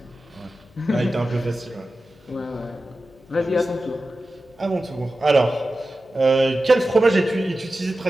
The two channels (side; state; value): left; noise; hum, 30 dB below the sound